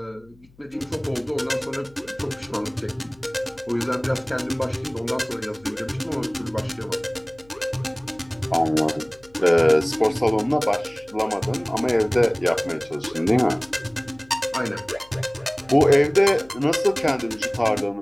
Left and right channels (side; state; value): left; noise; hum, 28 dB below the sound